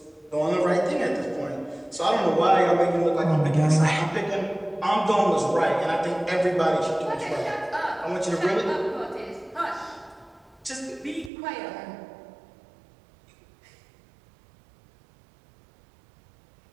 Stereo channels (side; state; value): left; drops out; at 11.3 s